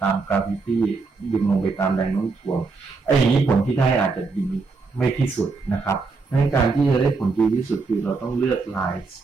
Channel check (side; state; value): left; quieter; 4.2 dB